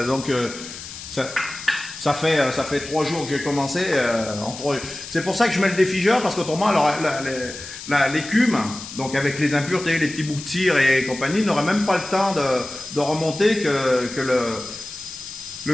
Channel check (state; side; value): noise; left; hiss, 12 dB below the sound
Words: donc ça fait 3 jours que j'ai commencé. C'est pour ça que je mets le défigeur, parce qu'autrement, l'écume, donc avec les impuretés, les petits bouts de cire et compagnie, n'aurait même pas le temps de remonter que le